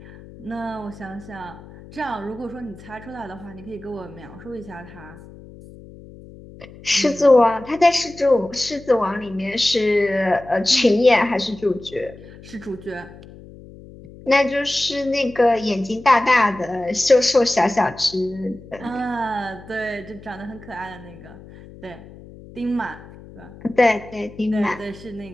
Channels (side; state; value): left; noise; hum, 19 dB below the sound